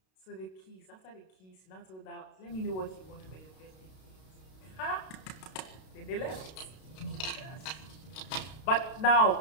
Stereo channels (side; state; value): right; late; 32 ms